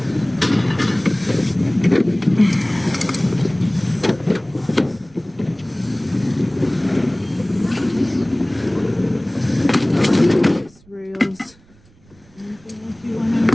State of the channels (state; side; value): noise; right; rumble, 29 dB below the sound